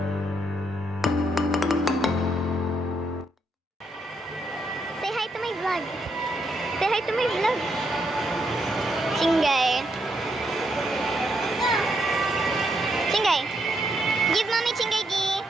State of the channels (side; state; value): both; normal; correlation 0.78